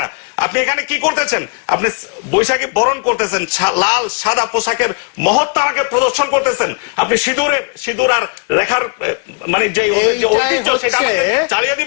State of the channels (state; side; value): quieter; right; 35.9 dB